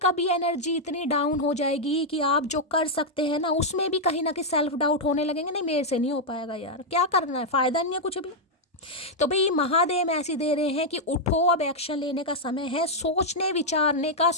कभी एनर्जी इतनी डाउन हो जाएगी कि आप जो कर सकते हैं ना, उसमें भी कहीं ना कहीं सेल्फ डाउट होने लगेंगे, नहीं मेरे से नहीं हो पाएगा यार, क्या करना है, फ़ायदा नहीं है कुछ भी। तो भाई महादेव ऐसे दे रहे हैं कि उठो, अब एक्शन लेने का समय है, सोचने विचारने का,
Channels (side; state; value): both; normal; correlation -0.03